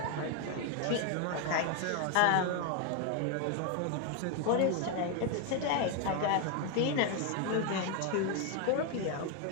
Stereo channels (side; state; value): both; different; correlation 0.01